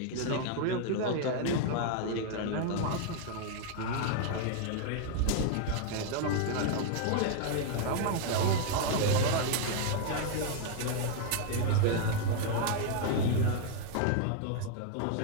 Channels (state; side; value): different; both; correlation 0.00